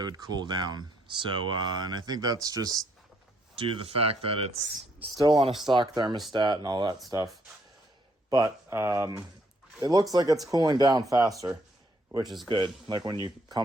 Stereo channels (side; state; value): both; normal; correlation 0.70